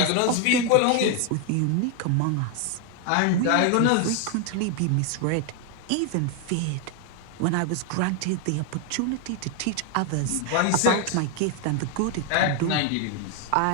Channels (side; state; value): both; different; correlation 0.01